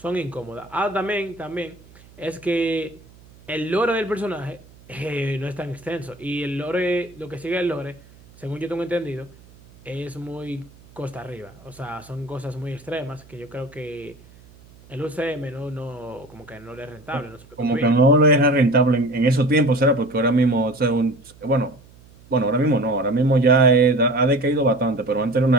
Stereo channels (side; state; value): right; noise; hum, 25 dB below the sound